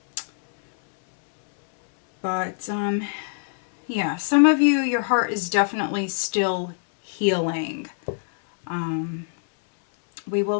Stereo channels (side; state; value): right; silent; digital silence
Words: But yeah, some of you, your heart is definitely still healing. We